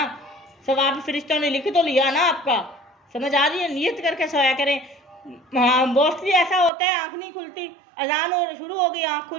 सवाब फरिश्तों ने लिख तो लिया ना आपका, समझ आ रही है, नियत करके सोया करें। हाँ मोस्टली ऐसा होता है आँख नहीं खुलती, अजान और शुरू हो गई आँख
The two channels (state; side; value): drops out; left; at 6.7 s